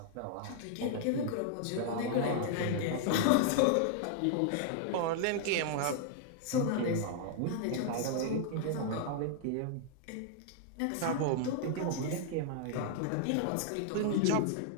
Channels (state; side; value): different; both; correlation -0.01